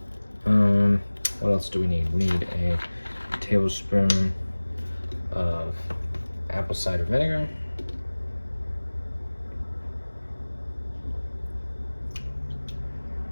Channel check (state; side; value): inverted; both; correlation -1.00